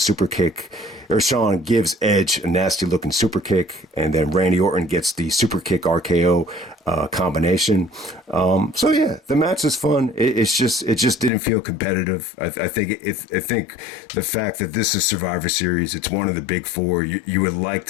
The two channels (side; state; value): right; drops out; at 11.3 s